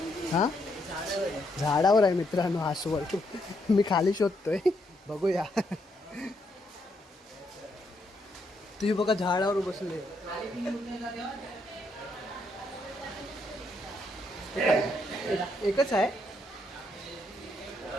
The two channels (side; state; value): both; normal; correlation 0.76